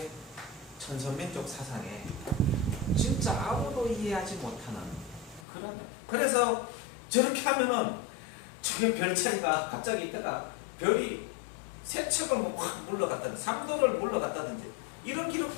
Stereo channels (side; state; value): right; drops out; at 5.5 s